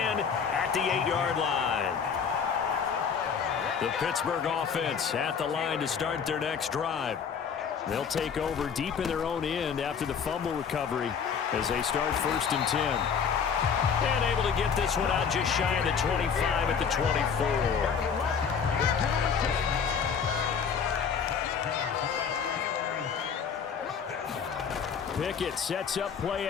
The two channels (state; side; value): quieter; right; 6.7 dB